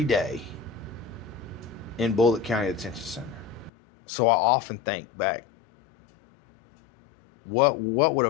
Day in Bullitt County Detention Center. So I often think back, what would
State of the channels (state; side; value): drops out; right; at 3.7 s